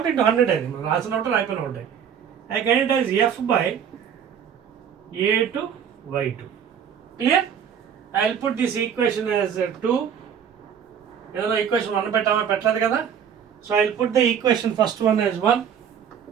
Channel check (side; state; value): left; quieter; 8.0 dB